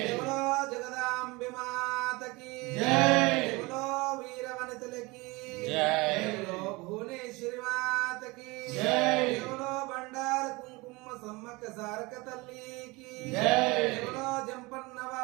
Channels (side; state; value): left; quieter; 24.0 dB